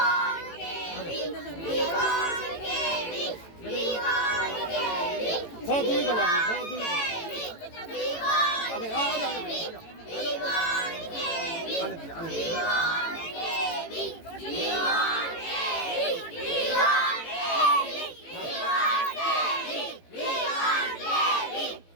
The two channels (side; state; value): right; late; 18 ms